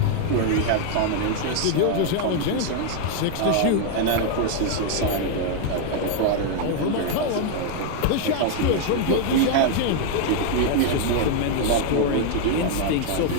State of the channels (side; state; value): both; different; correlation 0.00